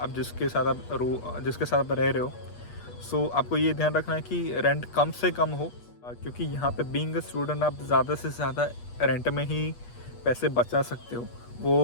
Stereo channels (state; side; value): late; right; 8.4 ms